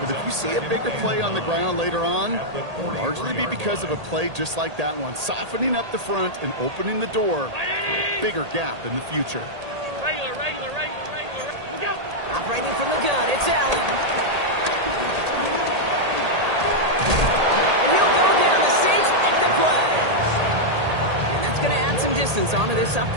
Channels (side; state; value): left; late; 1.8 ms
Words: if you see a bigger play on the ground later on, it'll largely be because of a play just like that one, softening up the front and opening the door for a bigger gap in the future. Regular. Look out. Operating from the gun, it's Allen. And he'll go down. The Saints make the play. And that's going to add some distance onto this